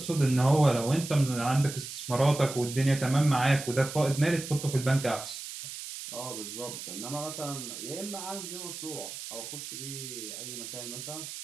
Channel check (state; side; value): noise; right; hiss, 9 dB below the sound